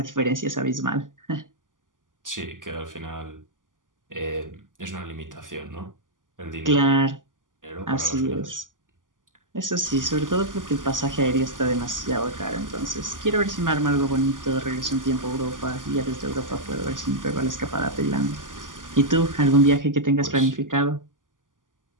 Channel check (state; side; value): late; left; 0.88 ms